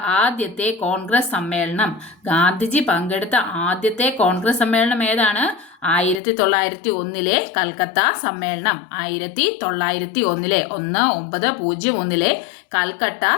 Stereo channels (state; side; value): drops out; right; at 6.2 s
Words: ആദ്യത്തെ കോൺഗ്രസ് സമ്മേളനം. ഗാന്ധിജി പങ്കെടുത്ത ആദ്യത്തെ കോൺഗ്രസ് സമ്മേളനം ഏതാണ്? 1901 കൽക്കത്ത സമ്മേളനം. 1901 1901 കൽക്കട്ട